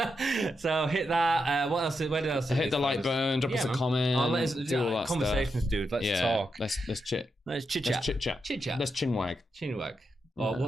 So hit that. What else? Where else? Hit the like button. Drop us a comment. Let's do all that conversations, stuff. Dude. Let's talk. Let's chit. Let's chit chat. Chit chat. Let's chinwag. Oh,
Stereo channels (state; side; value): normal; both; correlation 0.85